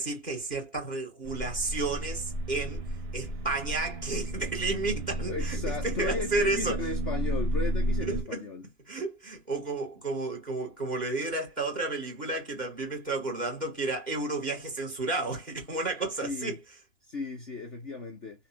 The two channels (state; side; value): late; right; 2.9 ms